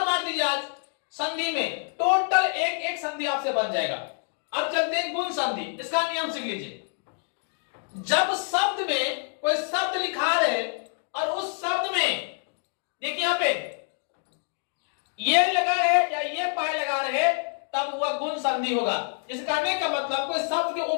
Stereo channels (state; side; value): silent; right; 57 dB below the other